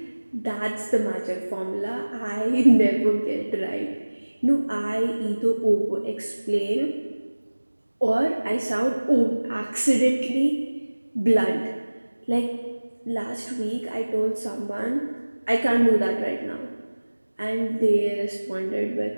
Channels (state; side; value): inverted; both; correlation -1.00